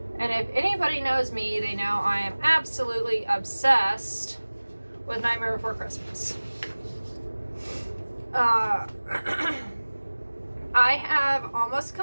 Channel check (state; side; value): inverted; both; correlation -1.00